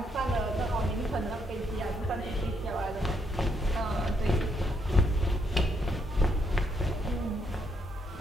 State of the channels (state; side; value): normal; both; correlation 0.75